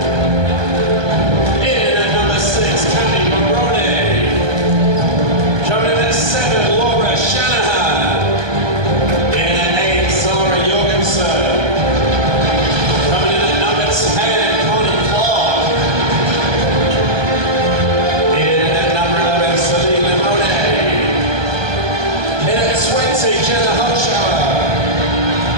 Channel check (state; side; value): late; left; 1.2 ms